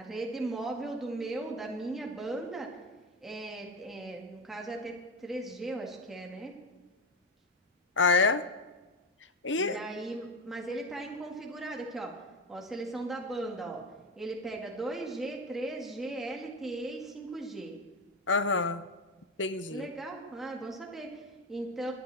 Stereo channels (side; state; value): both; normal; correlation 0.19